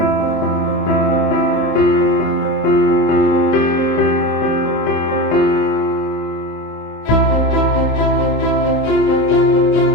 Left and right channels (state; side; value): late; right; 26 ms